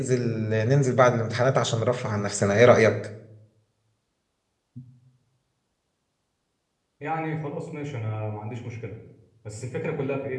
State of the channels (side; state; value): both; identical; correlation 1.00